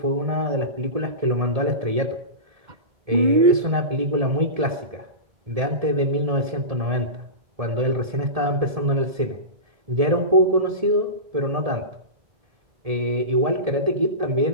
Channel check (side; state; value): left; late; 1.7 ms